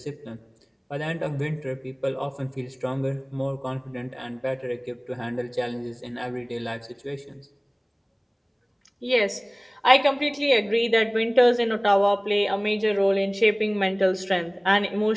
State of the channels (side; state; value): both; identical; correlation 1.00